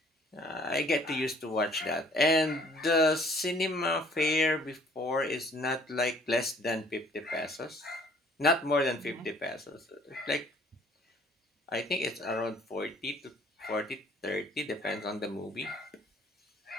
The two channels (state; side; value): normal; both; correlation 0.57